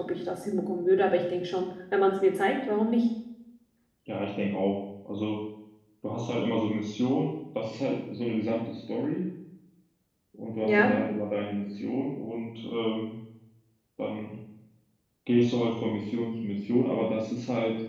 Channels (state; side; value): identical; both; correlation 1.00